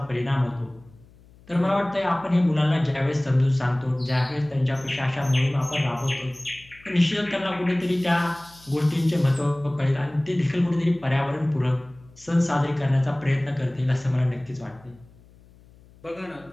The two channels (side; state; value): left; noise; hum, 26 dB below the sound